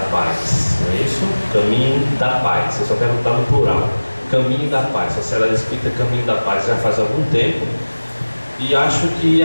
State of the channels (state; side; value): inverted; both; correlation -1.00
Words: Paz, não é isso? Caminho da Paz, eu só quero botar no plural. Caminho da Paz, Sociedade Espírita Caminho da Paz, já faz algum tempo e acho que